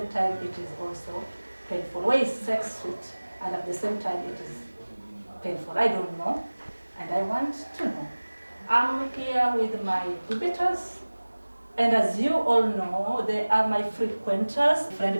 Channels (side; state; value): both; inverted; correlation -1.00